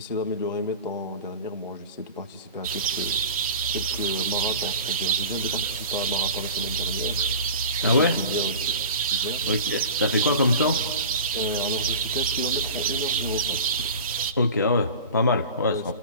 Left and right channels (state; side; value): inverted; both; correlation -0.37